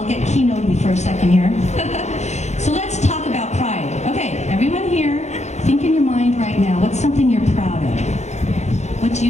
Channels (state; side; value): late; right; 0.33 ms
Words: get keynoted for a second here. So let's talk about pride. Okay, everyone here, think in your mind right now, what's something you're proud of? What do